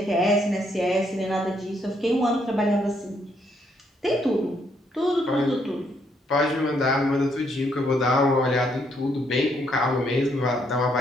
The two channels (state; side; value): normal; both; correlation 0.72